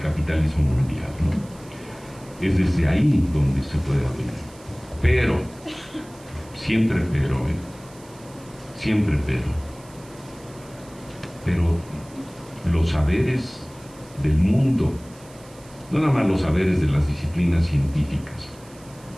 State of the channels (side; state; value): right; noise; hiss, 24 dB below the sound